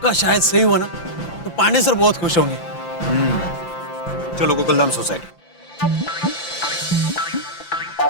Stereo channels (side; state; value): right; late; 5.8 ms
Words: शायद सही हुआ ना तो पांडे सर बहुत खुश होंगे। चलो गोकुलधाम सोसाइटी।